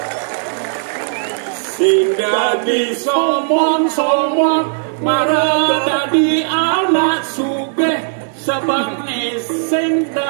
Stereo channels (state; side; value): silent; left; 69 dB below the other